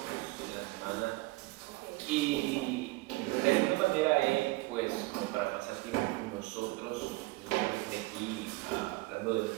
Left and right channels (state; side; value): quieter; left; 21.4 dB